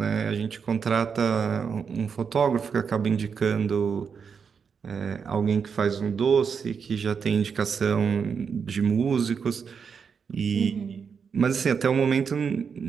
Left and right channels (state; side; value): quieter; left; 6.3 dB